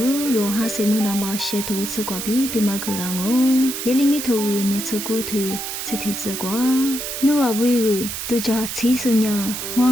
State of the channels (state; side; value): noise; right; hiss, 5 dB below the sound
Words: 哈是么那么些头吃瓜比嘛个啷哦，也里面头你吃过头。这题子瓜，你话为个都叫七十年，我